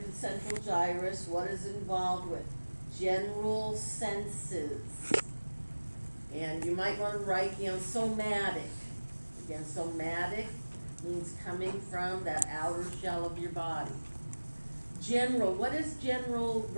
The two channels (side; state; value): both; inverted; correlation -1.00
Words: the central gyrus. What is involved with? General senses. And you might want to write, somatic. Again, somatic means coming from that outer shell of your body. General, what does general